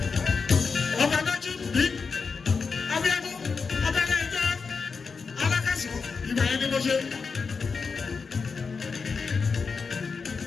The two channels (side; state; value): right; quieter; 5.1 dB